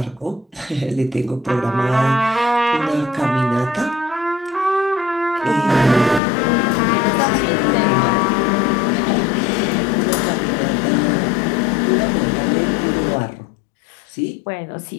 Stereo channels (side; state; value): right; drops out; at 6.2 s